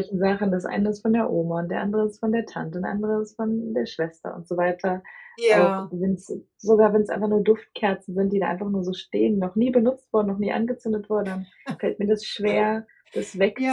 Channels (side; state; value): both; identical; correlation 1.00